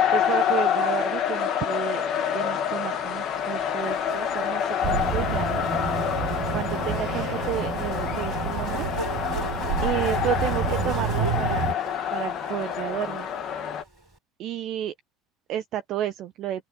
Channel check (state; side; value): normal; both; correlation 0.37